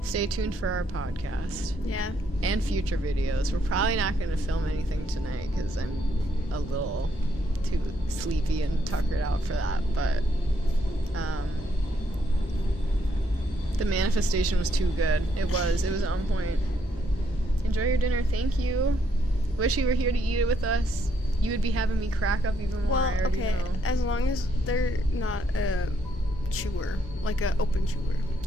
Stay tuned for our podcast Yeah. and future videos. We're probably not going to film anything tonight because I'm a little too sleepy and tuckered out for that. But the manifestation was too good. It was on point. Enjoy your dinner. Thank you. Wish you were here to eat it with us. You would be having me crack up even more. Well, I already okay, know. as long as they're not a chewer, like a open chewer.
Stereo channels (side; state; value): both; normal; correlation 0.73